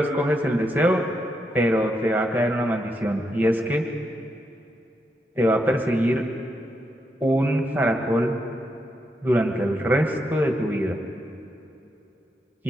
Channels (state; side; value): normal; both; correlation 0.82